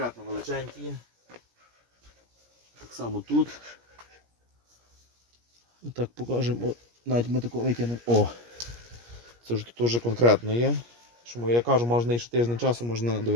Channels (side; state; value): left; late; 17 ms